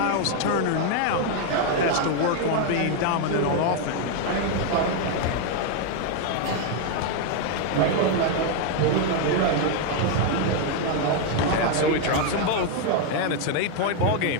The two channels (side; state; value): both; different; correlation 0.01